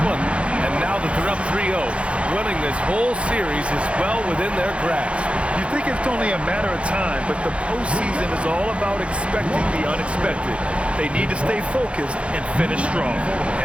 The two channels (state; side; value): late; left; 0.060 ms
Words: one. And now that they're up 3-0, winning this whole series is well within their grasp. You think it's only a matter of time, but the postseason is all about expecting the unexpected. They need to stay focused and finish strong.